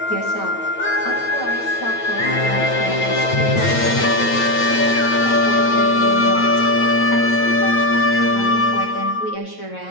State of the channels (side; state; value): right; late; 9.1 ms